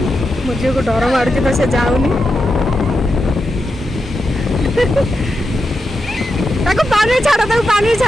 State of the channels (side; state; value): both; normal; correlation 0.88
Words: मो झील को डर मारुची तो से जाऊनी ताको पानी छाड़ा